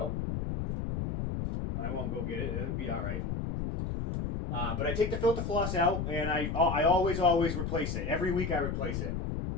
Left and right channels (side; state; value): left; noise; rumble, 2 dB below the sound